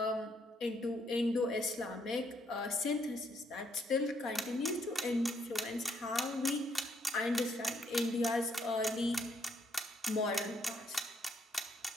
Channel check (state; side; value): normal; both; correlation 0.72